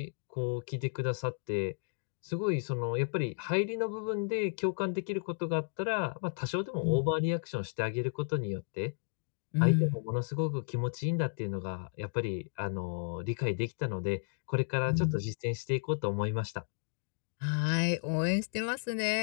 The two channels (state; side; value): silent; right; digital silence